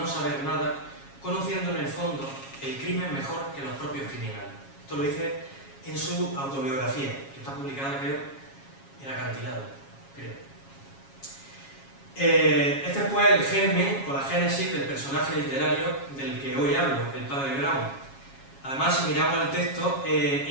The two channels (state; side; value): late; right; 7.3 ms